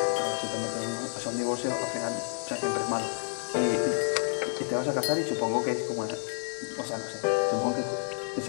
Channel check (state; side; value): silent; right; 58 dB below the other